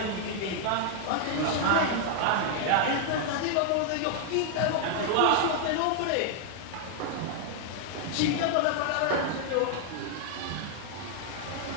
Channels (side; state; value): both; different; correlation 0.00